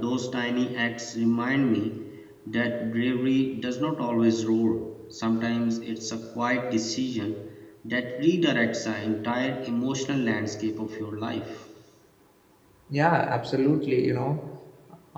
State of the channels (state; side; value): identical; both; correlation 1.00